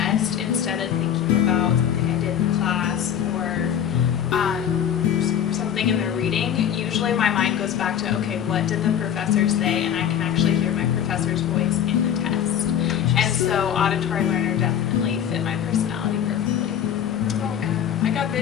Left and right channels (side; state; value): right; quieter; 9.4 dB